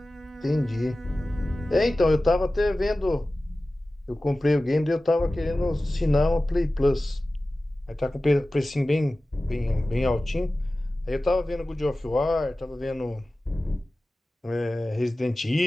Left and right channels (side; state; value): both; normal; correlation 0.96